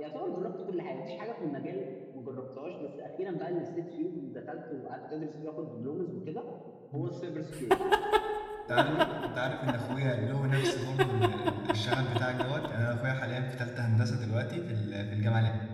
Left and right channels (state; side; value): identical; both; correlation 1.00